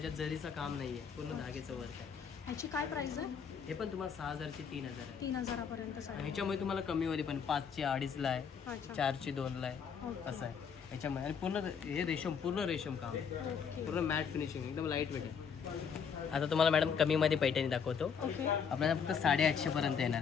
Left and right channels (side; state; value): right; quieter; 6.7 dB